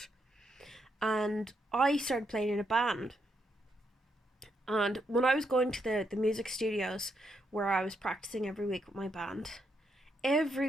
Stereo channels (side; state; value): both; normal; correlation 0.79